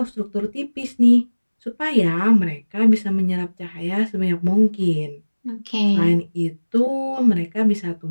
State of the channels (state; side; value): inverted; both; correlation -1.00